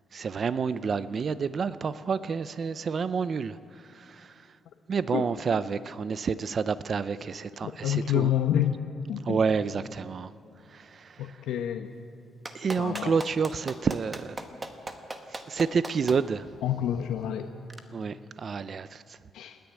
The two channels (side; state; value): both; normal; correlation 0.70